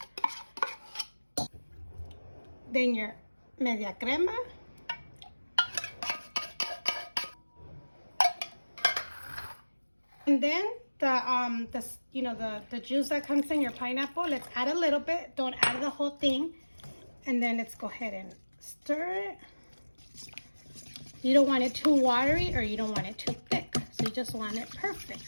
Then your media crema. And then the juice that comes in your pineapple, let's add a little bit, don't add the whole thing. And then let's go ahead and stir it. You don't want it too watery or you don't want it too thick. So you just want it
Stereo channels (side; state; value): both; inverted; correlation -1.00